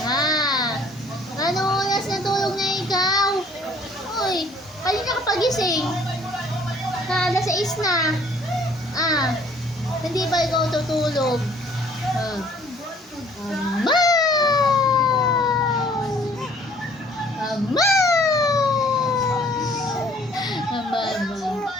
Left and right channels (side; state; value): both; normal; correlation 0.57